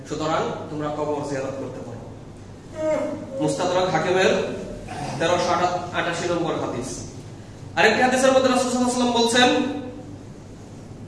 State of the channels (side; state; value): both; identical; correlation 1.00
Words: সুতরাং তোমরা কবর জিয়ারত করতে পারো। মুস্তাদরাক হাকিমের 1388 নম্বর হাদিস। আরেকটি হাদিসের মধ্যে রাসূল সাল্লাল্লাহু আলাইহি ওয়াসাল্লাম বলছেন,